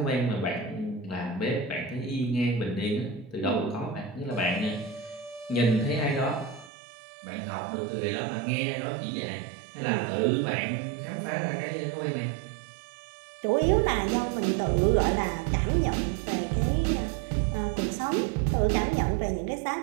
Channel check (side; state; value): left; drops out; at 6.7 s